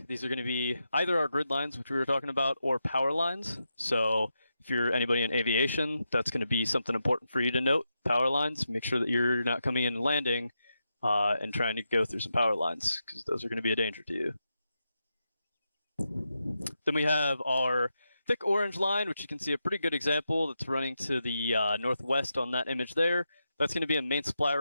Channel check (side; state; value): both; inverted; correlation -0.87